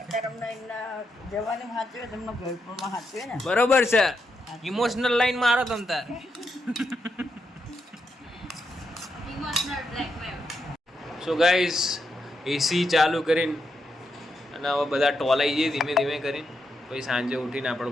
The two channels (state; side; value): normal; both; correlation 0.83